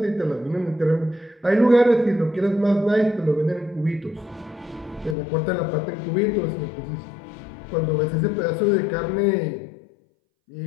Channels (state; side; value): drops out; right; at 5.2 s